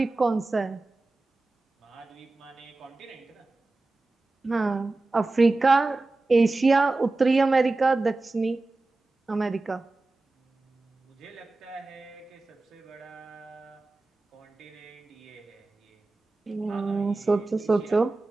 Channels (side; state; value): left; quieter; 3.2 dB